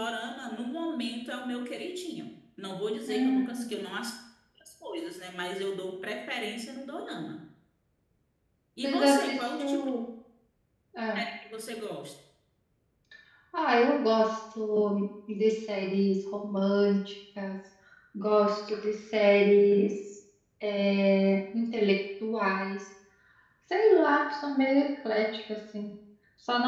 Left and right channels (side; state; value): both; identical; correlation 1.00